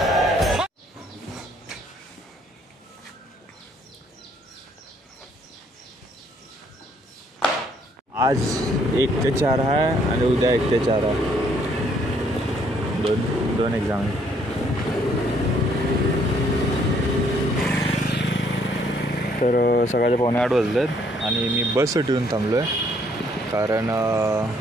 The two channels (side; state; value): both; normal; correlation 0.66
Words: आज 1 ते 4 आहे आणि उद्या 1 ते 4 आहे. दोन एक्झाम आहे. तर सकाळचे 7:45 वाजलेत आणि मी बससाठी येऊन थांबलो आहे, कारण